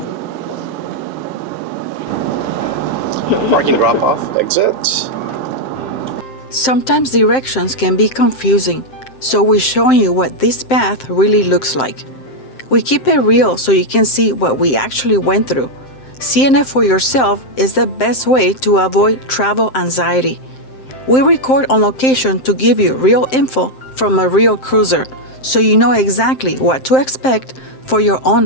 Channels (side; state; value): right; late; 7.7 ms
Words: Parking drop off, exit. Sometimes directions can be confusing, so we're showing you what this path really looks like. We keep it real so you can see what we actually went through. Seeing it for yourself is the best way to avoid travel anxiety. We record on location to give you real info from a real cruiser, so you know exactly what to expect for your